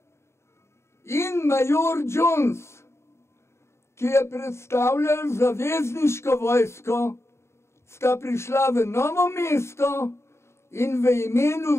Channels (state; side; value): late; right; 0.13 ms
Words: in major Jones, ki je predstavljal zavezniško vojsko, sta prišla v Novo mesto in v